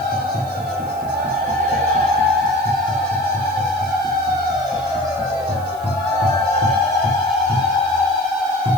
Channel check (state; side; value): noise; right; hiss, 23 dB below the sound